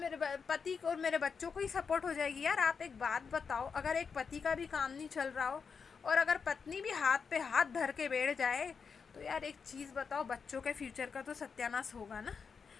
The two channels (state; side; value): quieter; right; 5.8 dB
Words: पति को और मेरे बच्चों को ही सपोर्ट हो जाएगी। यार आप एक बात बताओ, अगर एक पति का भी काम नहीं चल रहा हो और अगर पत्नी भी हाथ पे हाथ धर के बैठ जाए, तो यार एक चीज़ बताओ, बच्चों के फ्यूचर का तो सत्यानाश होगा ना।